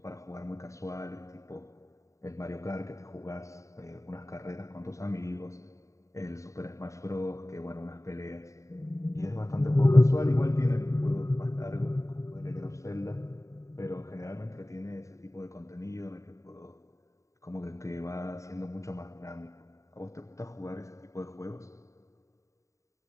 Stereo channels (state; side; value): late; right; 0.15 ms